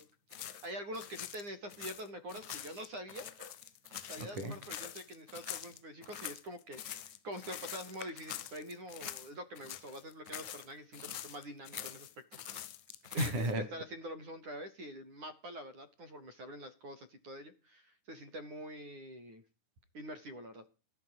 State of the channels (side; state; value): left; late; 9.7 ms